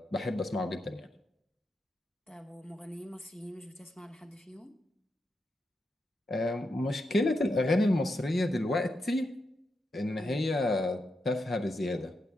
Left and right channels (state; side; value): normal; both; correlation 0.85